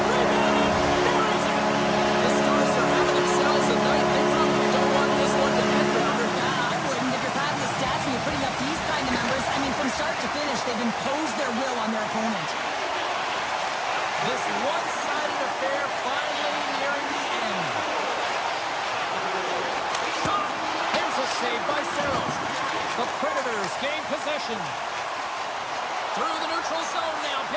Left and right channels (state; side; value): identical; both; correlation 1.00